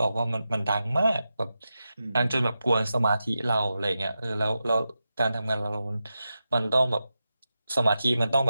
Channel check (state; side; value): inverted; both; correlation -0.91